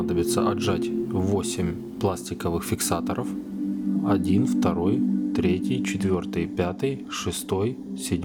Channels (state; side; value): identical; both; correlation 1.00